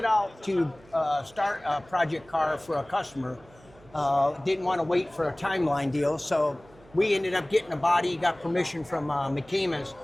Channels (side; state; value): right; noise; hum, 26 dB below the sound